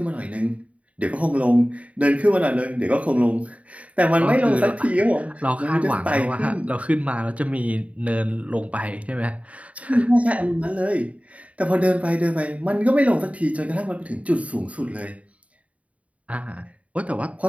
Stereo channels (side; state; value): left; late; 0.067 ms